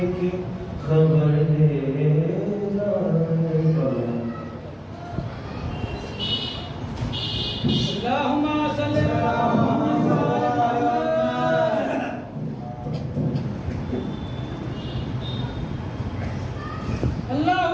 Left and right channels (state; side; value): identical; both; correlation 1.00